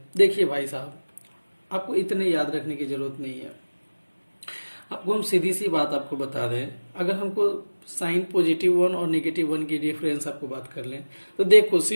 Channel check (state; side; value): inverted; both; correlation -1.00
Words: देखिए भाई साहब, आपको इतने याद रखने की जरूरत नहीं है। आपको हम सीधी सी बात आपको बता दें, अगर हमको साइन +1 और -1 की डिफरेंस आपको बात कर लें तो देखो